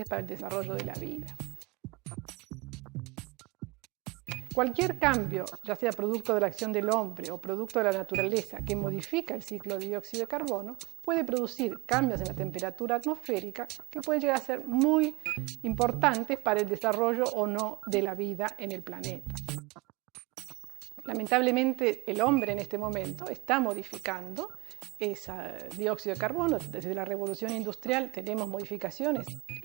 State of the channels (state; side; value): quieter; left; 24.6 dB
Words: para el desarrollo de la vida. Cualquier cambio, ya sea producto de la acción del hombre o producto de la naturaleza que modifica el ciclo de dióxido de carbono, puede producir cambios en la temperatura atmosférica que pueden llegar a ser muy importantes para el desarrollo o no de la vida en el planeta. Lamentablemente, el hombre en este momento está modificando ese dióxido de carbono. Desde la revolución industrial tenemos modificaciones